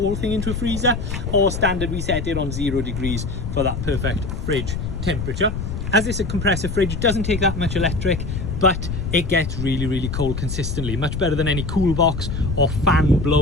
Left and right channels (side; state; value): left; noise; rumble, 4 dB below the sound